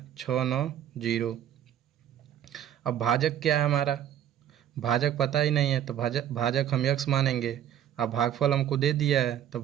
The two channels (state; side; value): quieter; left; 10.6 dB